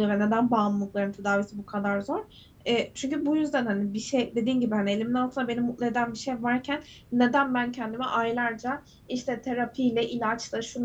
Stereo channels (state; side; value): identical; both; correlation 1.00